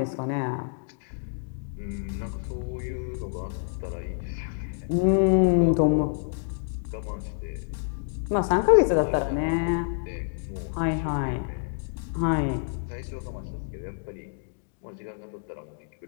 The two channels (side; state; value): right; silent; digital silence